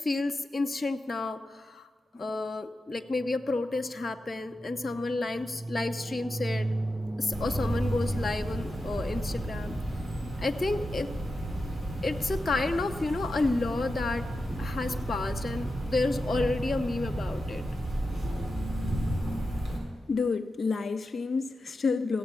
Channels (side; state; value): both; normal; correlation 0.90